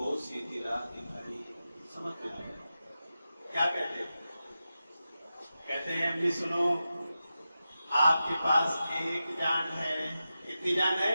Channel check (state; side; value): inverted; both; correlation -0.92